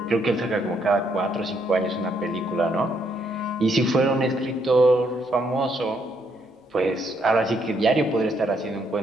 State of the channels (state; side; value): normal; both; correlation 0.73